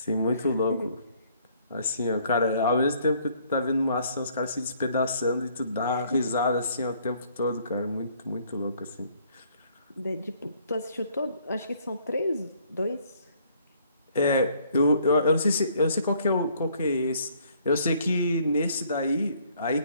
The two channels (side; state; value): both; inverted; correlation -0.63